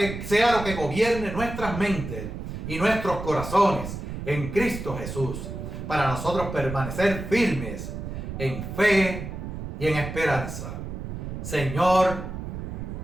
lo que gobierne nuestras mentes y nuestros corazones en Cristo Jesús, para nosotros permanecer firmes en fe y en esperanza. Señor,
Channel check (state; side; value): noise; right; rumble, 7 dB below the sound